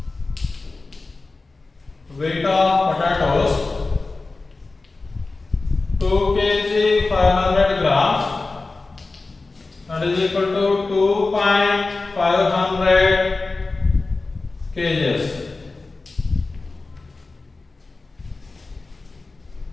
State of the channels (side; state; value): right; quieter; 3.6 dB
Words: Weight of potatoes. 2 kg 500 grams, that is equal to 2.500 kgs.